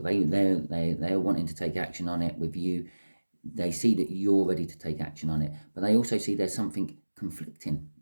They're wanting to take action on it with you. They see that you're ready to take action on it, but they also see there's something conflicting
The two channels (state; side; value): inverted; both; correlation -1.00